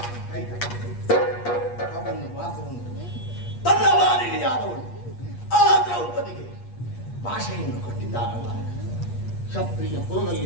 ಅವನು ಮಾತು ಉಂಟು, ತನ್ನ ವಾರಿಯಾದವಳು ಆ ದ್ರೌಪದಿಗೆ ಭಾಷೆಯನ್ನು ಕೊಟ್ಟಿದ್ದಾರಲ್ಲ, ಕ್ಷತ್ರಿಯ ಕುಲದಲ್ಲಿ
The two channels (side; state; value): right; late; 8.4 ms